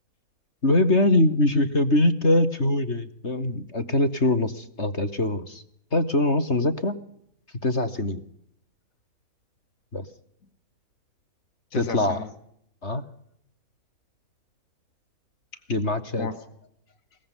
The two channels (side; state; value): right; late; 3.3 ms